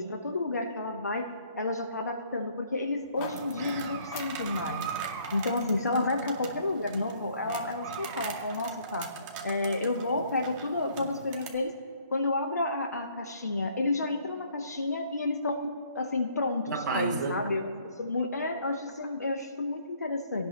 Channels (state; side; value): inverted; both; correlation -0.62